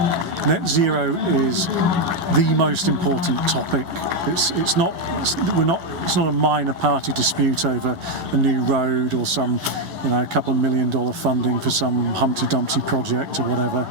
net zero is the most important topic. It's not a minor party dispute over a new road or some a couple of $1 million funding for some Humpty Dumpty project or whatever.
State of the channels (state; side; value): late; left; 11 ms